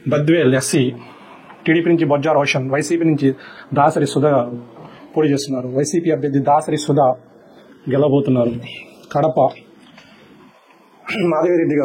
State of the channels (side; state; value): both; identical; correlation 1.00